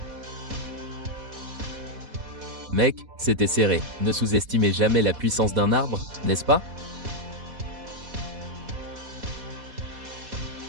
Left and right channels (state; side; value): late; left; 4.1 ms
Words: Mec, c'était serré. Ne sous-estimez jamais la puissance d'un arbre, n'est-ce pas?